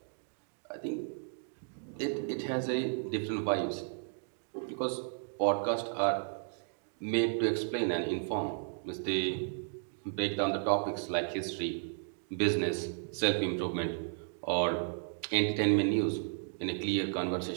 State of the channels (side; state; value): left; silent; digital silence